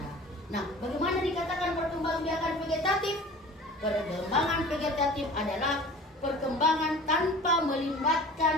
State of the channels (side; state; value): both; normal; correlation 0.42